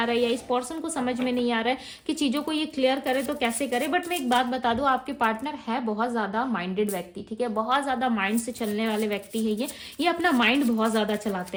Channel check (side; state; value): both; identical; correlation 1.00